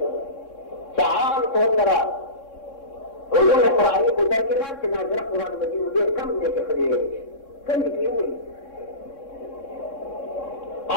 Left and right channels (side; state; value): right; late; 3.6 ms